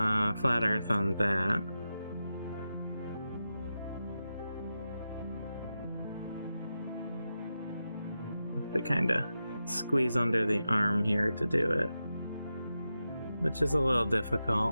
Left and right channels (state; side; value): inverted; both; correlation -0.90